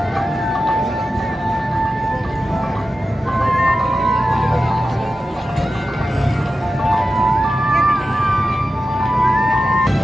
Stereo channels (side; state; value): both; normal; correlation 0.92